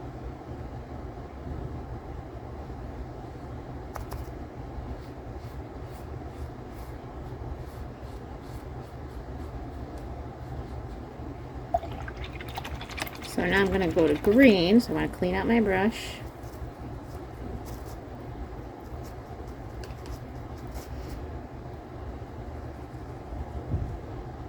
So now I'm going to go to green, so I want to clean out my brush.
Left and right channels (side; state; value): both; identical; correlation 1.00